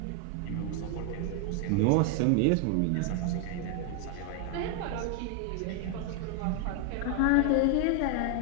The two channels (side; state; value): both; different; correlation 0.01